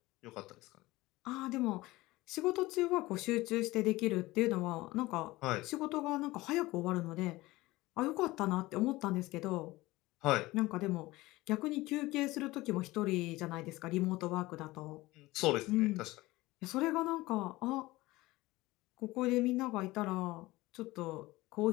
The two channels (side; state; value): right; quieter; 19.5 dB